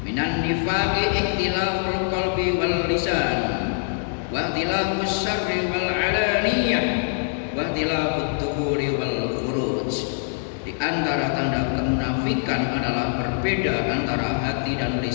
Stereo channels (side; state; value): right; silent; digital silence